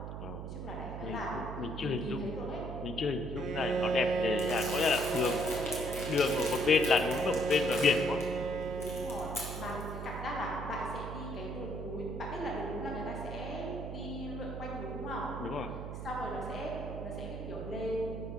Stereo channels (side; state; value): right; noise; hum, 7 dB below the sound